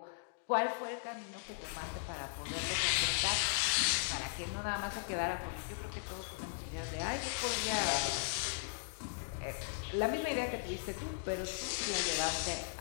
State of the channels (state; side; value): silent; right; digital silence